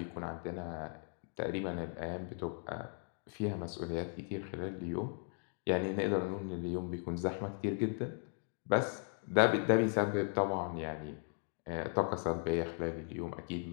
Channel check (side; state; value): right; silent; 53 dB below the other